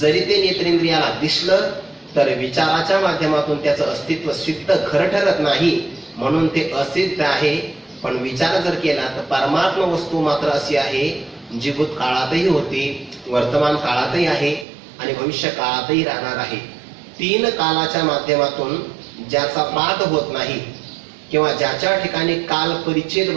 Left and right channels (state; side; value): drops out; left; at 14.7 s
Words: ते नेत्रेंद्रियाला दिसलं तर विचाराच्या माध्यमातून त्याचं अस्तित्व सिद्ध खरं ठरत नाही, म्हणून ते असिद्ध आहे. पण विचार जर केला तर परमात्मा वस्तू मात्र अशी आहे जी भूतकाळातही होती, वर्तमान काळातही आहे आणि भविष्य काळातही राहणार आहे. 3 कालाच्या माध्यमातून ज्याचा पाठ होत नाही किंवा ज्याच्या ठिकाणी काल परिच्छेद